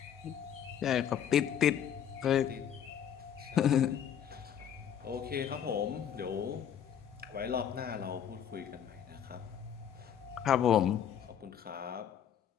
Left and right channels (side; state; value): right; quieter; 9.1 dB